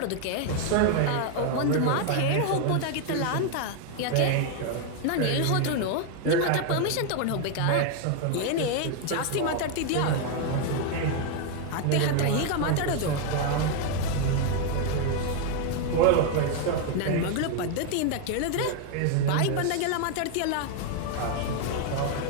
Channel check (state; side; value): different; both; correlation 0.00